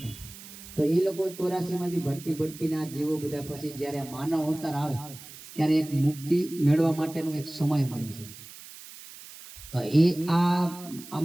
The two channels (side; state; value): right; noise; hiss, 16 dB below the sound